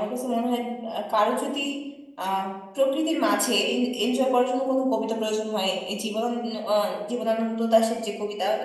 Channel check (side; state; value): both; identical; correlation 1.00